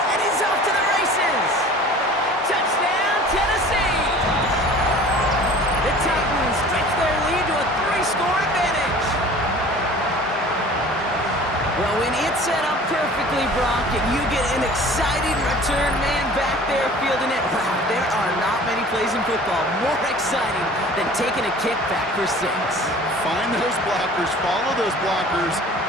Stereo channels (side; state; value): both; normal; correlation 0.45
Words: and he's off to the races. Touchdown, Tennessee. The Titans stretch their lead to a 3-score advantage. Well, when it's set up perfectly, Brock, and you get an exciting return man back there fielding it, wow, there are not many plays in football more exciting than taking a kick back for 6. Find those blockers, follow those blockers,